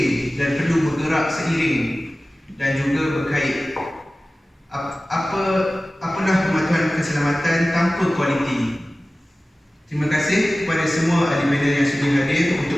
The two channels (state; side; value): normal; both; correlation 0.97